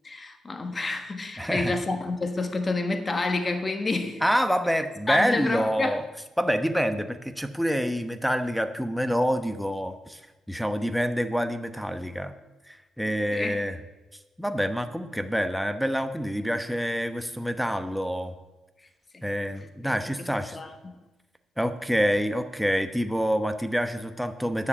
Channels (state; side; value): normal; both; correlation 0.95